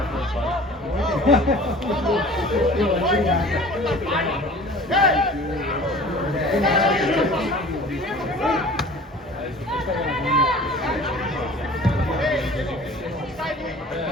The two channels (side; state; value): both; normal; correlation 0.44